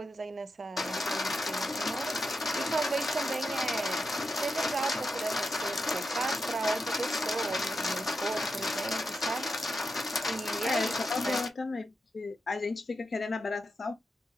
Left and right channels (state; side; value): normal; both; correlation 0.87